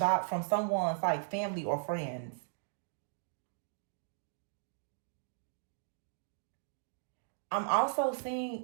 someone's like family or friends. I'm also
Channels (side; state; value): left; silent; digital silence